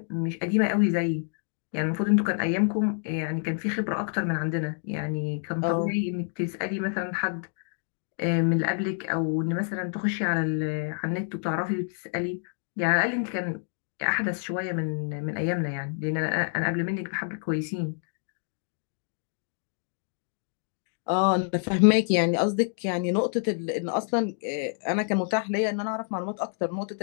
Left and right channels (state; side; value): silent; right; digital silence